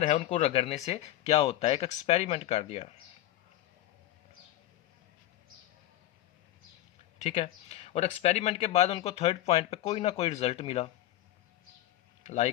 है उनको रगड़ने से क्या होता है, एक एक्सपेरिमेंट कर दिया। ठीक है, और एक्सपेरिमेंट के बाद उनको थर्ड पॉइंट पे कोई ना कोई रिजल्ट मिला।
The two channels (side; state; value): right; quieter; 14.4 dB